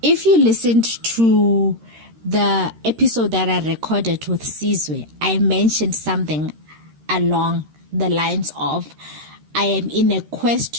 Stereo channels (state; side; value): late; left; 13 ms